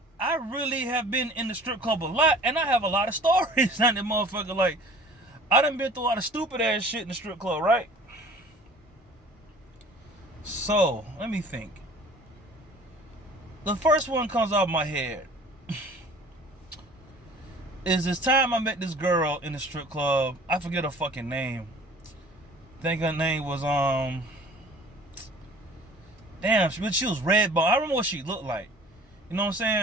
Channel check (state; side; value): normal; both; correlation 0.48